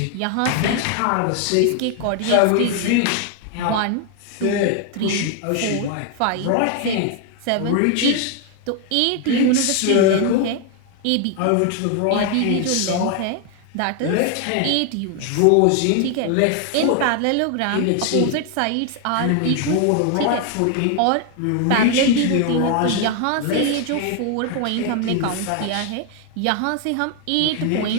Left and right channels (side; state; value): both; different; correlation 0.01